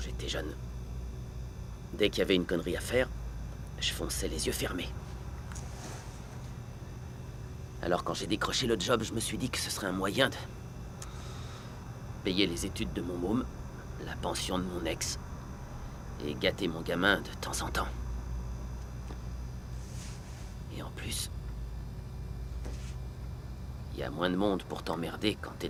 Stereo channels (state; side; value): identical; both; correlation 1.00